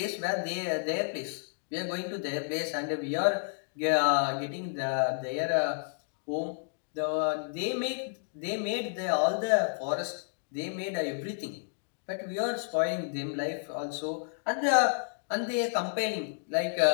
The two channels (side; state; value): right; silent; digital silence